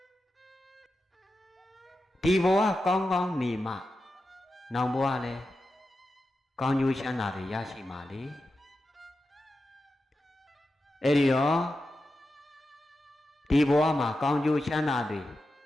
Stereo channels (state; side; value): normal; both; correlation 0.90